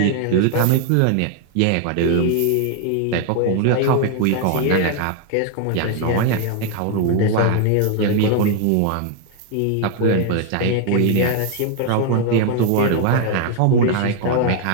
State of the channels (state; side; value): different; both; correlation 0.00